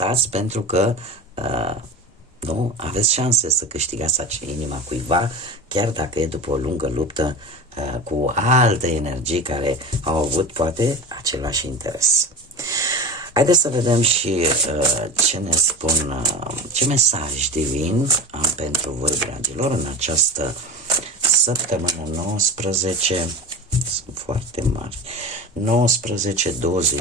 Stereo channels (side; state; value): both; normal; correlation 0.30